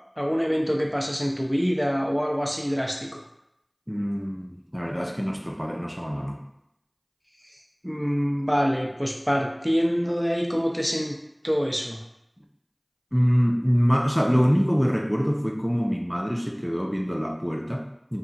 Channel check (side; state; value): both; identical; correlation 1.00